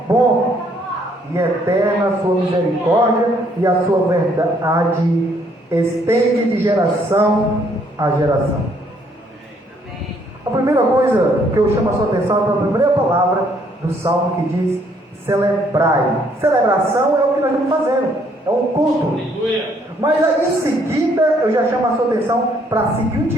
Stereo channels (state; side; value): normal; both; correlation 0.67